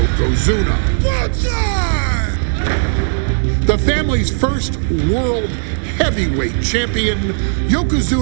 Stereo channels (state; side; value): silent; left; 69 dB below the other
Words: The family's first world heavyweight champion,